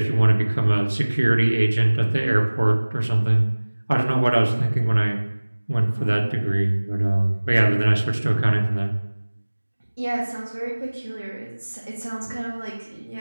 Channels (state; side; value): inverted; both; correlation -1.00